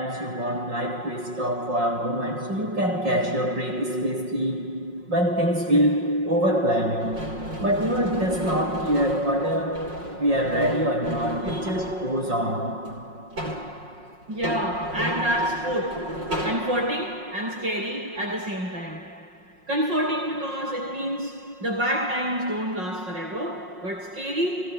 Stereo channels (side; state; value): left; late; 5.5 ms